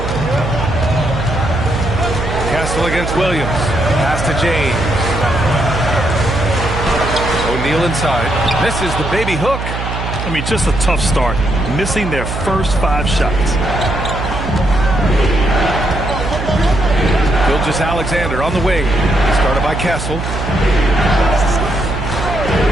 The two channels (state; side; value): noise; right; hum, 5 dB below the sound